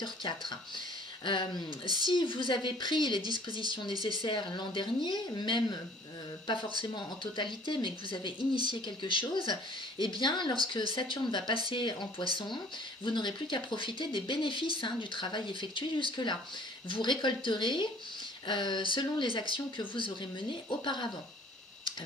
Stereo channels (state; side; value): normal; both; correlation 0.53